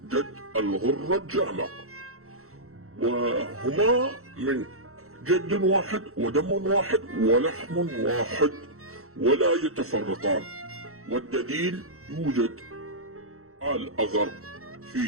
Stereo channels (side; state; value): left; late; 0.64 ms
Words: جد الغرة الجامع، وهما من جد واحد ودم واحد ولحم واحد ولا يتفرقان. والدليل يوجد الأغر